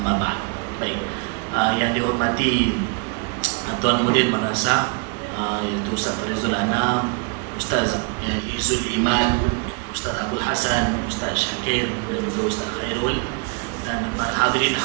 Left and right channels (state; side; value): quieter; left; 33.8 dB